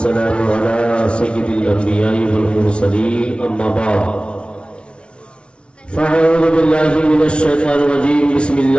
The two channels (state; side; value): late; right; 0.058 ms